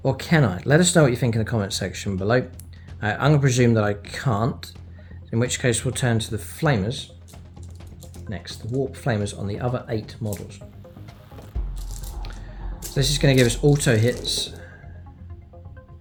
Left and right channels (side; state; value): both; identical; correlation 1.00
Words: Or can I? Let us know what you think in the comment section below. I'm going to presume that I can't, in which case we'll turn to the Flamers next, the Warp Flamers on the other 8 models. So this is going to give us auto hits,